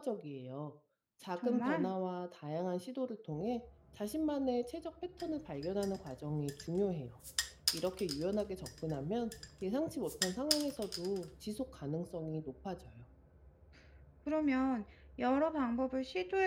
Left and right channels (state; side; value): identical; both; correlation 1.00